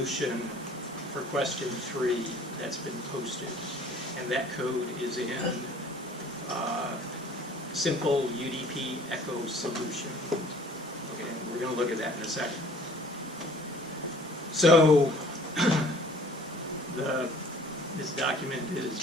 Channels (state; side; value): normal; both; correlation 0.52